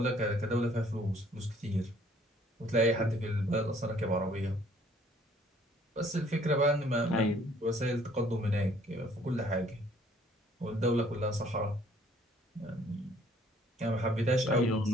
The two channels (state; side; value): normal; both; correlation 0.60